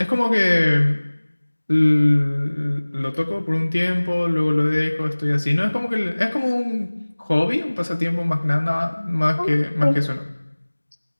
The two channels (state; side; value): inverted; both; correlation -1.00